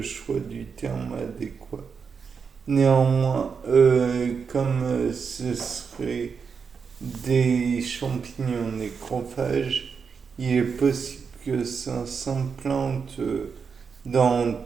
choix du terme adéquat. Néanmoins, comme ce serait des champignons nécrophages, il est possible que ça s'implante dans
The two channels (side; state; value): left; quieter; 5.9 dB